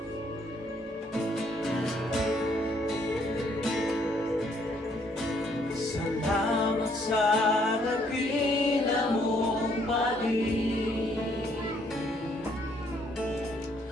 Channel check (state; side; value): normal; both; correlation 0.67